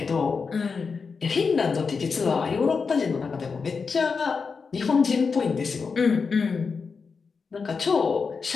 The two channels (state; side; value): quieter; right; 5.1 dB